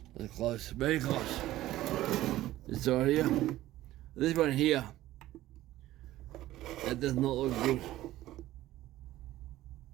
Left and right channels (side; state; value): left; quieter; 15.2 dB